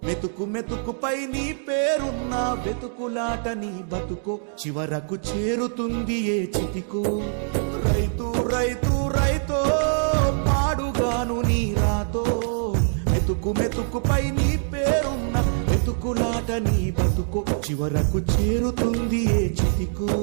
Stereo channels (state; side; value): silent; left; digital silence